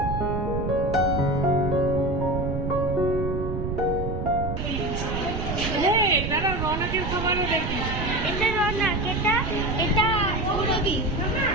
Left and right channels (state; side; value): noise; right; rumble, 3 dB below the sound